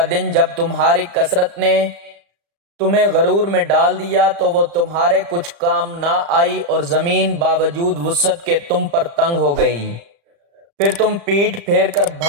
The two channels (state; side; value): late; left; 35 ms